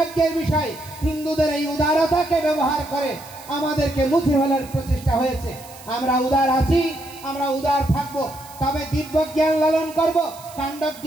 বিষয়, হিন্দুদের এই উদারতাকে ব্যবহার করে আমাদেরকে মুছে ফেলার প্রচেষ্টা হয়েছে। আমরা উদার আছি, আমরা উদার থাকবো, তবে দিব্য জ্ঞান লালন করব, কাণ্ড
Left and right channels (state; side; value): noise; right; hiss, 19 dB below the sound